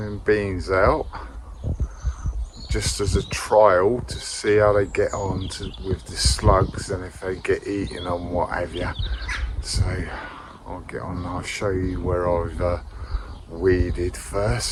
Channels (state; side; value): identical; both; correlation 1.00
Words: beans out just as a trial to see how they get on with the slugs and if they get eaten and what have you. So I'll get on and I'll show you where I've weeded